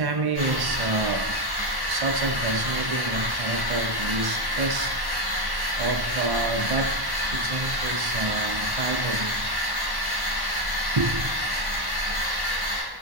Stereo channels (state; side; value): late; left; 1.1 ms